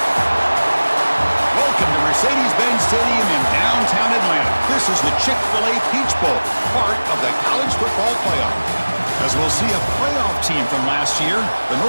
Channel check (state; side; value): inverted; both; correlation -1.00